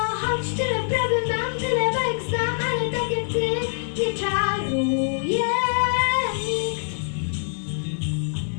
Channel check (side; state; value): right; silent; digital silence